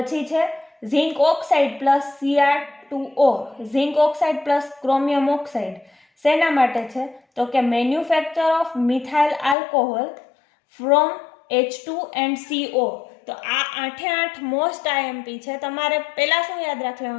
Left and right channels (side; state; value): right; drops out; at 9.6 s